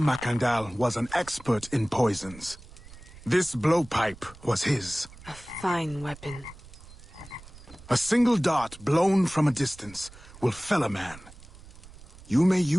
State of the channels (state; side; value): noise; right; rumble, 19 dB below the sound